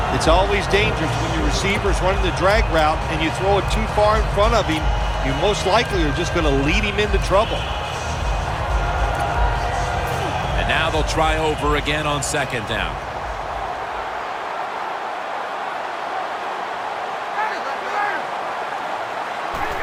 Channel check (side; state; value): both; identical; correlation 1.00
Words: It's always dangerous when your receiver's running the drag route and you throw it too far in front of him. You most likely are just going to lead him into trouble. And now they'll try over again on second down.